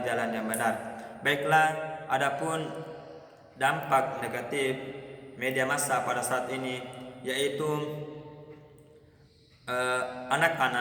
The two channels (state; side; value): identical; both; correlation 1.00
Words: jalan yang benar. Baiklah, adapun dampak negatif media massa pada saat ini, yaitu